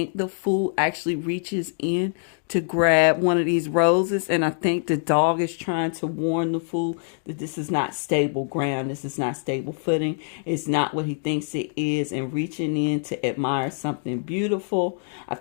the fool actually reaches in to grab one of these roses, and I think the dog is trying to warn the fool that this is not stable ground, this is not stable footing, it's not what he thinks it is, and reaching in to admire something beautiful. I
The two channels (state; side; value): silent; right; 61 dB below the other